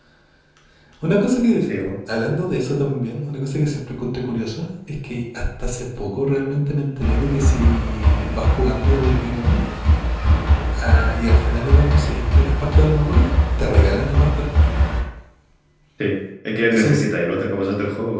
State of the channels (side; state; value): both; identical; correlation 1.00